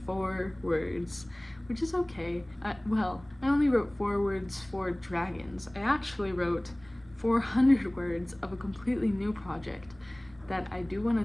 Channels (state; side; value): noise; left; rumble, 25 dB below the sound